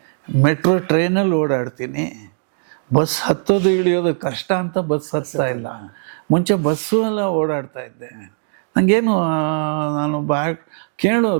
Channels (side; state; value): left; silent; digital silence